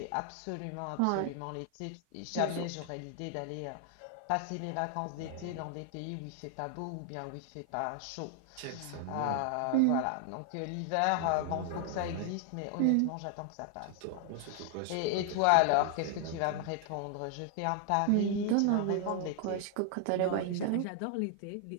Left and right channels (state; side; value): different; both; correlation 0.00